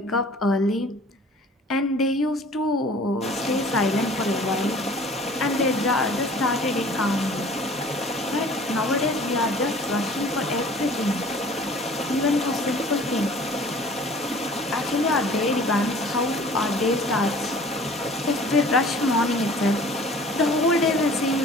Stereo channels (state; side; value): normal; both; correlation 0.48